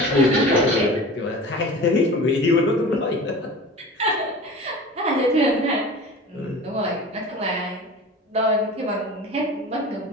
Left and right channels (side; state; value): both; normal; correlation 0.37